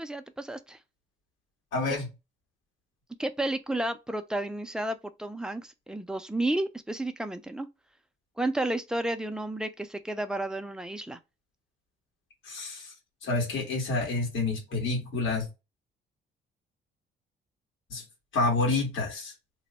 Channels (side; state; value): both; normal; correlation 0.43